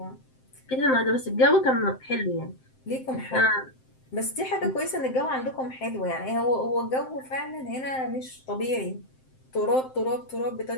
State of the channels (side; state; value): right; late; 7.7 ms